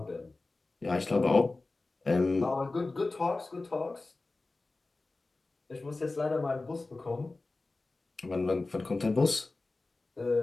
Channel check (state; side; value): quieter; right; 3.3 dB